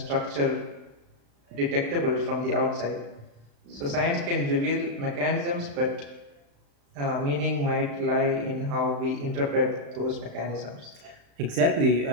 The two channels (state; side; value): late; left; 35 ms